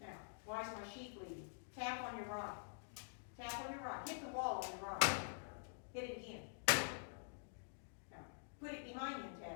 Now, why is my sheep bleeding? Tap on your right. Tap on your right. Hit the wall on your right. Hit it again. Now, put it behind you and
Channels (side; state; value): right; silent; digital silence